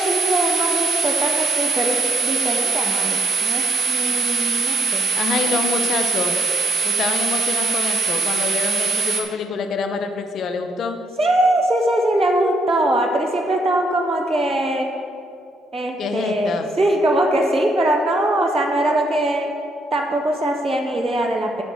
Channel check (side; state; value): both; normal; correlation 0.77